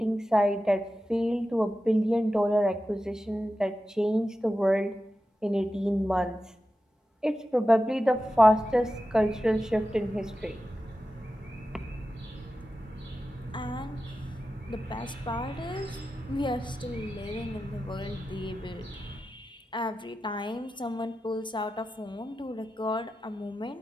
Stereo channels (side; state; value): both; normal; correlation 0.92